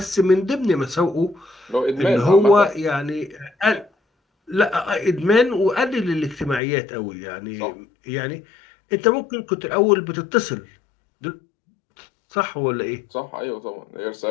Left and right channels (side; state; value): right; drops out; at 6.6 s